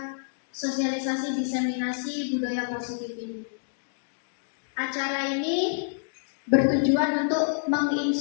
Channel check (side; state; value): right; silent; digital silence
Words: sosialisasi diseminasi budaya positif ini. Acara ini bertujuan untuk